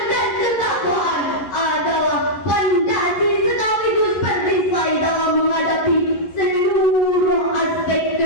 dan ketakwaan adalah fondasi sekaligus perisai dalam menghadapi seluruh aspek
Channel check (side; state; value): right; late; 11 ms